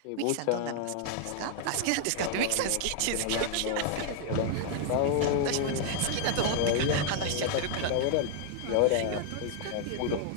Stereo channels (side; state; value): both; different; correlation 0.00